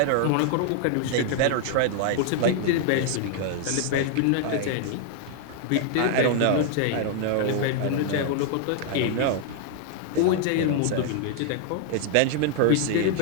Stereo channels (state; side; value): different; both; correlation 0.00